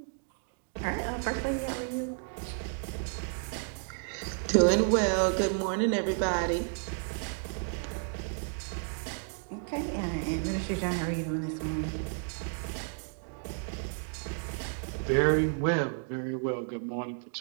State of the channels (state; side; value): silent; left; 56 dB below the other